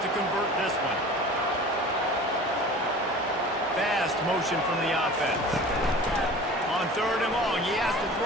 to convert this one. Fast motion from the offense. On 3rd and long, he has to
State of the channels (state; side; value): normal; both; correlation 0.40